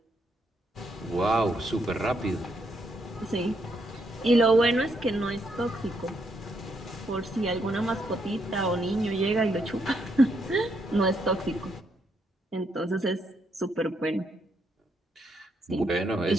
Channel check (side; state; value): both; normal; correlation 0.76